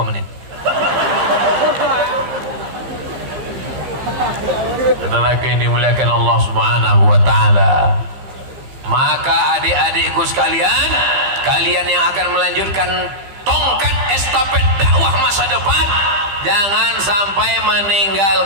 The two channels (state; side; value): late; left; 15 ms